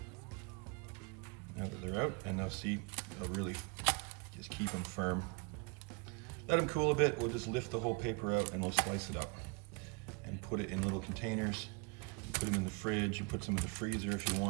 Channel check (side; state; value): left; quieter; 31.0 dB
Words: now that they're out, and they'll see, they'll really just keep them firm. Let them cool a bit, we'll just lift the whole paper out and we'll slice it up and put it in little containers. Put them in the fridge, you put some in the freezer if you